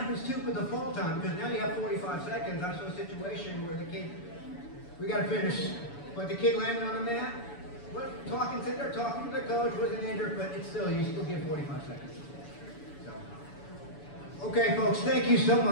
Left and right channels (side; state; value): right; late; 7.0 ms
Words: too with the fall time, because now you have 45 seconds. I saw a situation where the kid, we got to finish, but the kid landed on the mat, sitting there talking to the coach, wasn't injured, but it's still, you still get 45 seconds. So. Okay, folks, thank you so